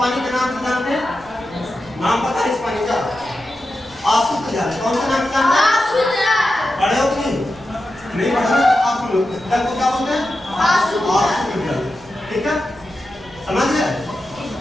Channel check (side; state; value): right; noise; rumble, 24 dB below the sound